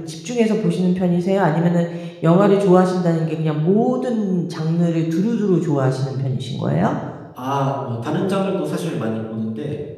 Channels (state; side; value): identical; both; correlation 1.00